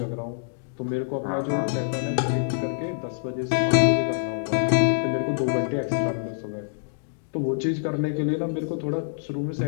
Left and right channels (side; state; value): right; silent; digital silence